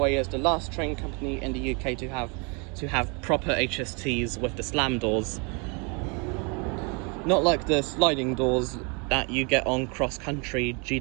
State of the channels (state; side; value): quieter; left; 32.7 dB